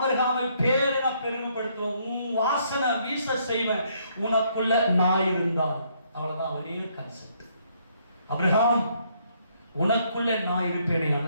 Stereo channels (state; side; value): inverted; both; correlation -0.70